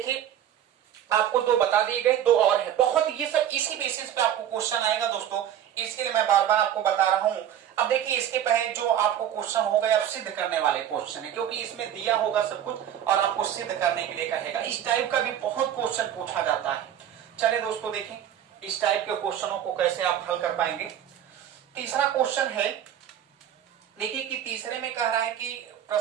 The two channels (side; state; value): left; quieter; 10.4 dB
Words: आपको 2 बता दिए गए, 2 और है। बहुत ये सब इसी बेसिस पे आपको क्वेश्चन आएगा दोस्तों, इसके लिए मैं बार बार आपको बता रहा हूं। अब देखिए इसके पहले जो आपको क्वेश्चन हो गए, अब सिद्ध करने वाले क्वेश्चन है, क्योंकि इसमें दिया होगा सब कुछ और आपको सिद्ध करने के लिए कहेगा। इस टाइप का भी बहुत क्वेश्चन पूछा जाता है। चलिए दोस्तों देखें इस टाइप के क्वेश्चनों को कैसे आप हल कर पाएंगे। तीसरा क्वेश्चन है, देखिए कि तीसरे में कह रहा है कि